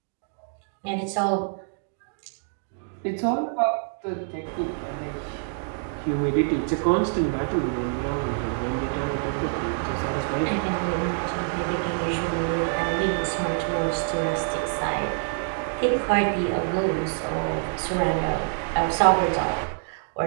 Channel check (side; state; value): left; silent; 61 dB below the other